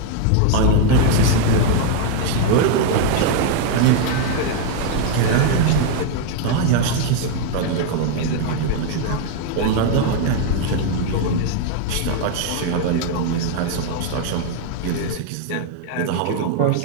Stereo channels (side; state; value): both; different; correlation 0.00